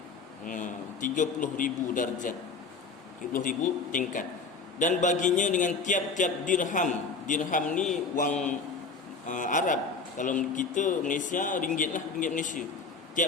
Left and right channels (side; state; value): right; quieter; 4.5 dB